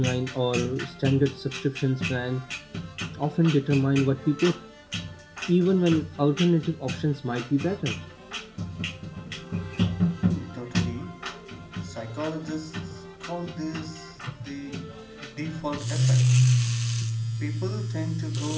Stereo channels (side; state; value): both; identical; correlation 1.00